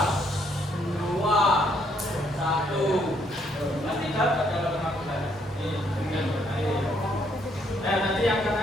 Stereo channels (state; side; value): normal; both; correlation 0.70